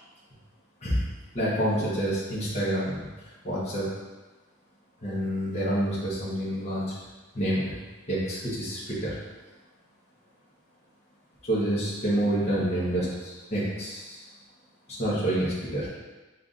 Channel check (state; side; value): normal; both; correlation 0.60